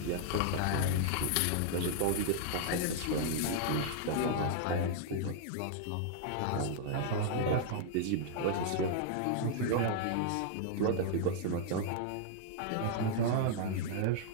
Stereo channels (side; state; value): both; different; correlation -0.01